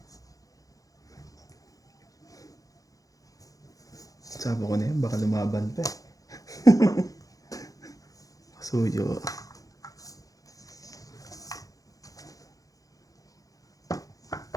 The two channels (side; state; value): right; late; 0.17 ms